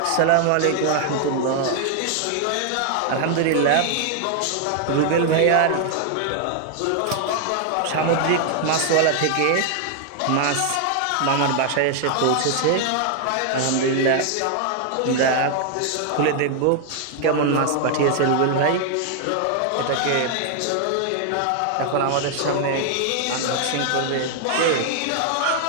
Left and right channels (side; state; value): both; different; correlation 0.00